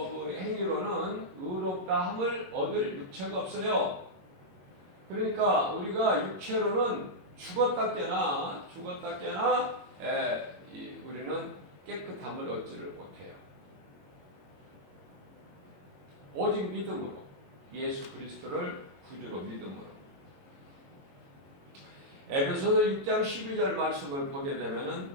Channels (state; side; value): late; left; 21 ms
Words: 행위로는 의롭다 없다 함을 얻을 육체가 없어요. 그러니까 우리가 육체로는 죽었다 깨나 우리는 깨끗함을 얻지를 못해요. 오직 믿음으로, 예수 그리스도를 구주로 믿음으로. 에베소서 6장 12절 말씀을 보게